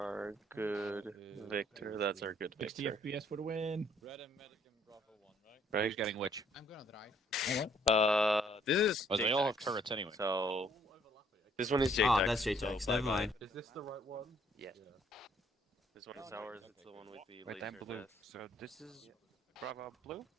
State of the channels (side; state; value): both; normal; correlation 0.64